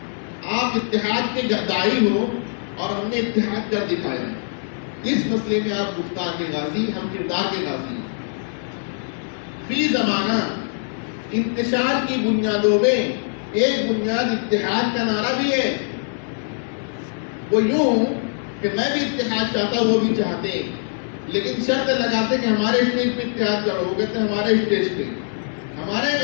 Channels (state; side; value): silent; right; digital silence